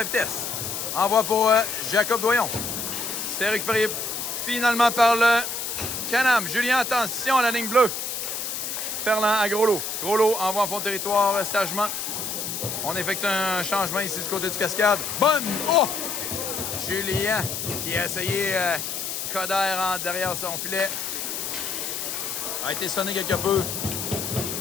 vitesse. Envoie pour Jacob Doyon. C'est récupéré finalement par le Canam. Julien, attention à la ligne bleue. Ferland à Groslo. Groslo envoie en fond de territoire sagement. On effectue un changement ici du côté du Cascade. Bonne! Oh! Julien qui a essayé Coder derrière son filet. A été sonné quelque peu.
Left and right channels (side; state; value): left; noise; hiss, 4 dB below the sound